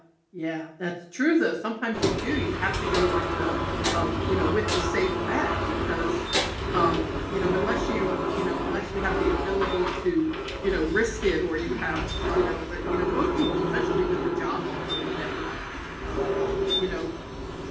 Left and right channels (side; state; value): both; identical; correlation 1.00